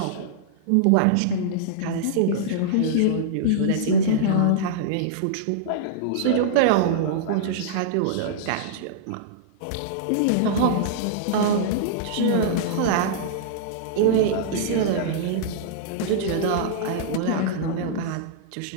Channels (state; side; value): different; both; correlation -0.02